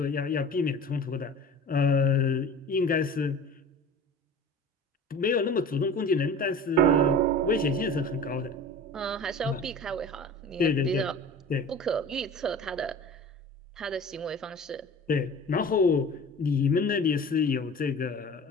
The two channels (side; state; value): both; normal; correlation 0.39